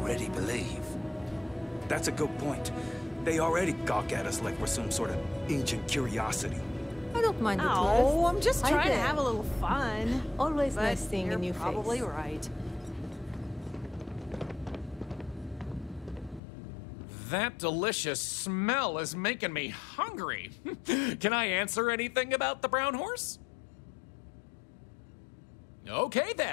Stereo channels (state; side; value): drops out; right; at 16.4 s